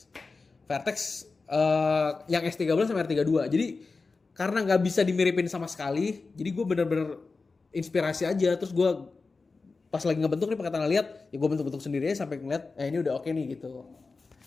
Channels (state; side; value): quieter; right; 4.1 dB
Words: yang S13 sama R32. Jadi karena nggak bisa dimiripin sama sekali, jadi gue bener-bener inspirasi aja. Terus gue pas lagi ngebentuk nih pakai tangan lihat, ya gue bentuk-bentuk sendiri aja sampai ngeliat, ini udah oke nih gitu.